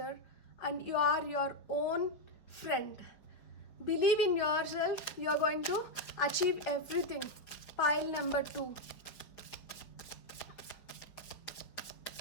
And you are your own friend. Believe in yourself. You are going to achieve everything. Pile number 2.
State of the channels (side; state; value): right; late; 5.1 ms